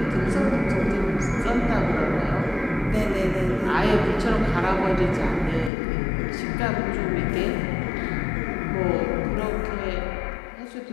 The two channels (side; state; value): right; drops out; at 5.7 s